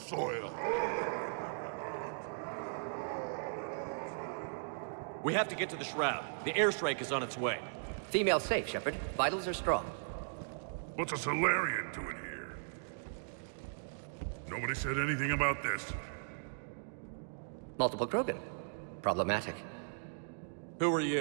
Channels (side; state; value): left; silent; digital silence